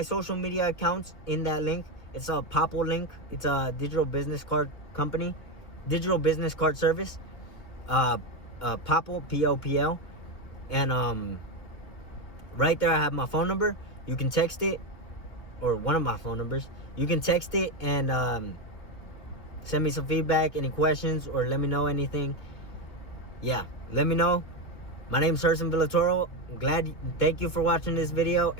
social media accounts in that link. It's a Popl link. It's a digital business card company, digital business card service. Popl, Popl. And right there I have my phone number. You can text it, or one of my phone numbers. You can text it and send me some feedback, any questions, or let me know anything. Yeah, let me know. My name is Herson Villatoro. Thank you for watching this video,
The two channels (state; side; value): late; right; 2.3 ms